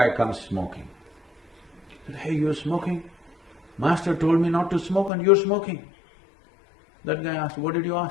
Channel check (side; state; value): right; drops out; at 5.1 s